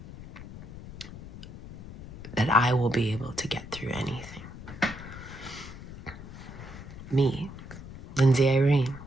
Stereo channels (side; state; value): left; noise; rumble, 13 dB below the sound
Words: that I will be able to get through anything. Me, Lindsay Irene,